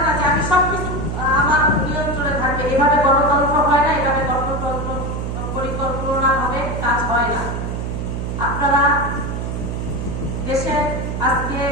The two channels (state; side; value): noise; right; hum, 3 dB below the sound